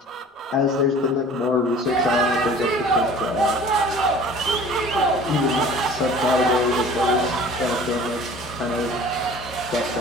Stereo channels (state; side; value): normal; both; correlation 0.46